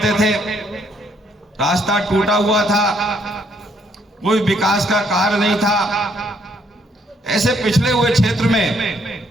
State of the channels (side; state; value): both; normal; correlation 0.69